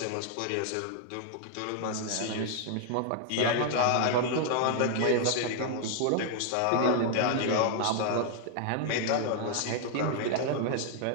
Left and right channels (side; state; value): both; different; correlation 0.00